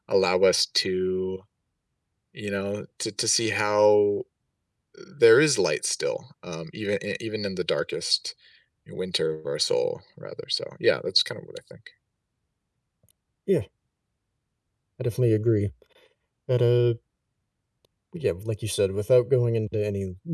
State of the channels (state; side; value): identical; both; correlation 1.00